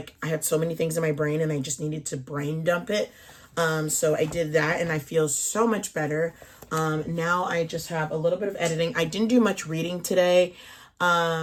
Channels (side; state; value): both; identical; correlation 1.00